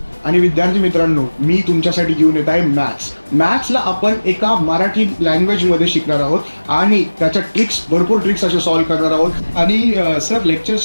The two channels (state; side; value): inverted; both; correlation -1.00